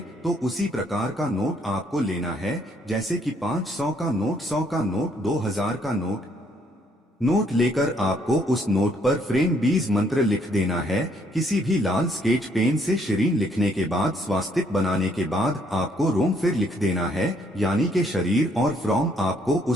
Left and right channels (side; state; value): both; normal; correlation 0.68